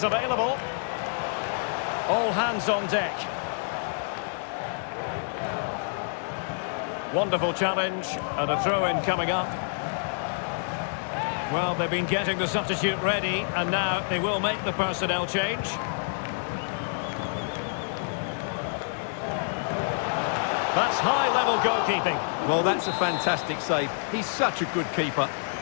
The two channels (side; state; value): right; silent; digital silence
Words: available. All hands on deck. Wonderful challenge and a throw-in coming up. Well, they've been getting the substitute ready, and now they will make the personnel change. That's high-level goalkeeping. Well, that's a fantastic save. He's such a good keeper.